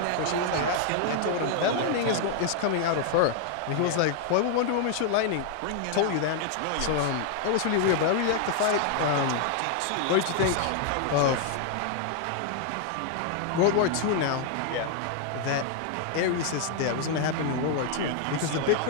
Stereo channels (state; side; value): different; both; correlation 0.00